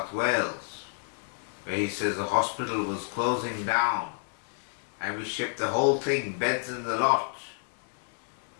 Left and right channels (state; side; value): silent; right; digital silence